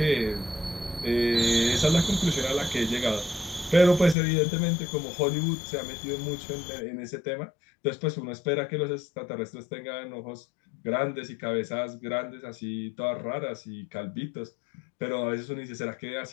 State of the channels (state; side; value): drops out; right; at 4.2 s